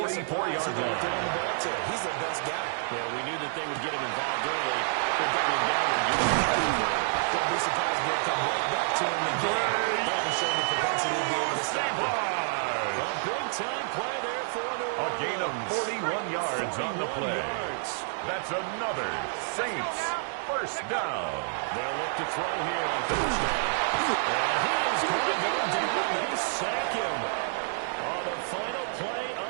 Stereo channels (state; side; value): silent; left; digital silence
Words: line. He's the best guy. Yeah, we knew that they would get him involved early. They're going down and give him Don't be surprised if they'll come right back to him again. They haven't shown the propensity to be able to stop him. a big-time play there for New Orleans. A gain of 41 yards on the play. That's another Saints first down. They'll look to throw here on first down. And he is going to go down. They sack him on the final play